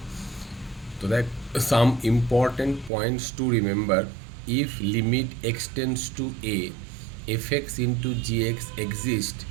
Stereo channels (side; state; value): left; drops out; at 2.9 s